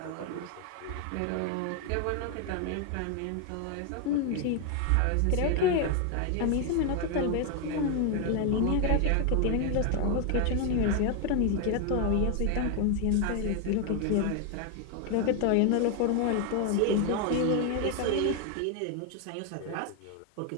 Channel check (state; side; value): different; both; correlation 0.01